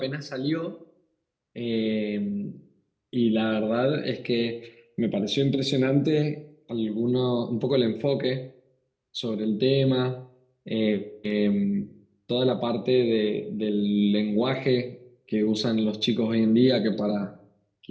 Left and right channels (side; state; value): both; identical; correlation 1.00